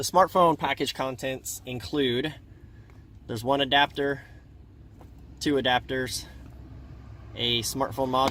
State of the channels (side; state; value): both; identical; correlation 1.00